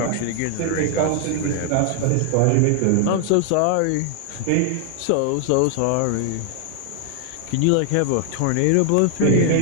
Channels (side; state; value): both; different; correlation 0.00